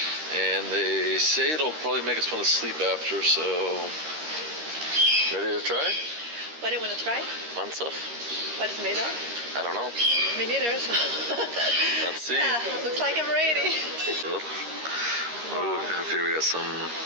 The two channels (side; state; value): left; late; 13 ms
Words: and they say it'll probably make us want to sleep after, so ready to try? What do you want to try? Mansaf? What it's made of? I don't know. Me neither. So. Let's see. Yeah, looks like I'm ready. Oh, here we got some